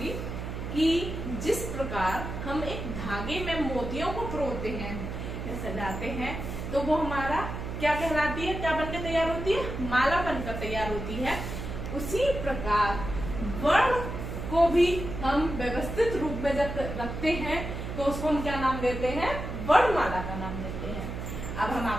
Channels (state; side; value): noise; right; hum, 6 dB below the sound